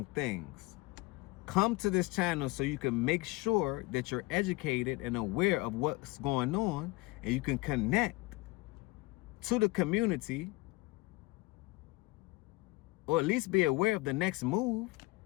things. come to this channel so you can make sure that you're educated and aware of what's going on, and you can connect to the community, or at least be aware of the next move,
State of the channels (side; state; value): right; quieter; 22.3 dB